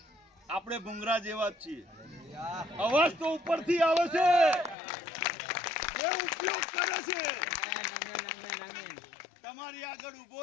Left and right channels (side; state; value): right; drops out; at 4.8 s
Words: આપણે ભૂંગરા જેવા જ છીએ. અવાજ તો ઉપરથી આવે છે, એ ઉપયોગ કરે છે. તમારી આગળ ઉભો